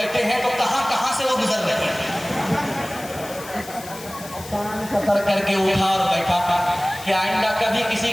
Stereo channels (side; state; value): left; noise; hiss, 15 dB below the sound